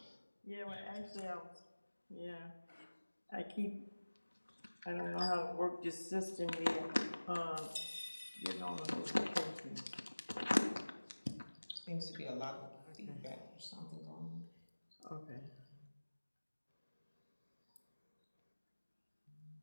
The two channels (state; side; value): inverted; both; correlation -1.00